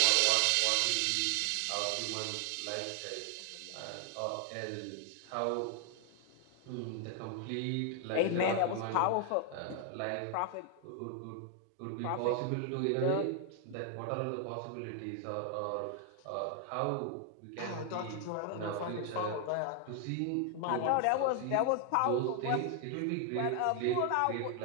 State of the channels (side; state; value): both; different; correlation 0.00